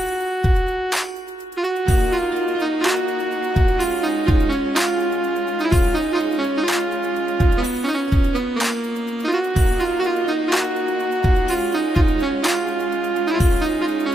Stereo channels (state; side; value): normal; both; correlation 0.83